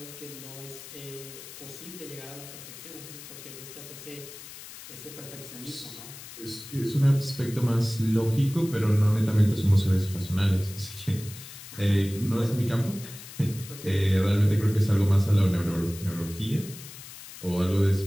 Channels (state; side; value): noise; left; hiss, 14 dB below the sound